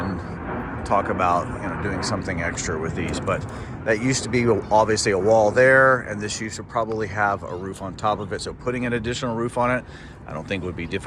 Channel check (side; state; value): both; identical; correlation 1.00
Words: talk about doing something extra with these. But that used to be obviously a wall there, and this used to probably have a roof on top of it. So putting an additional roof on it, I don't think would be